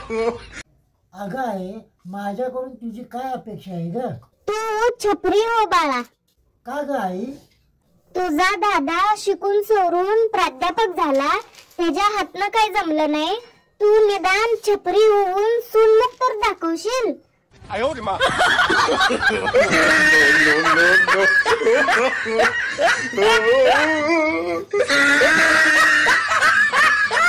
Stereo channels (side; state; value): both; identical; correlation 1.00